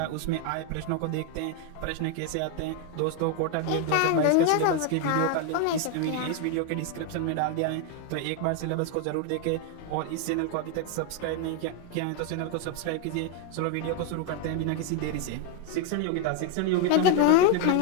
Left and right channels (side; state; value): both; different; correlation 0.01